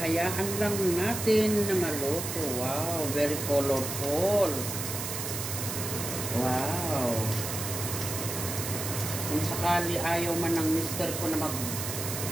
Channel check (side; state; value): right; noise; hiss, 5 dB below the sound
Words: lang natin na maluto. Wow, very colorful. Wow. Kung sakali ayaw man ng mister ko na